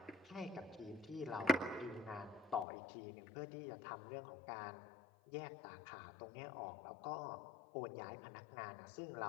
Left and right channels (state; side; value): drops out; right; at 2.7 s